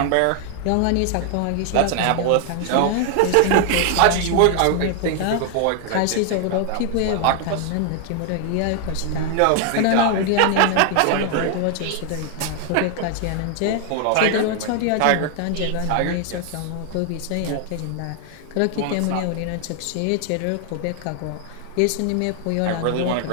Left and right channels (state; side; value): different; both; correlation 0.00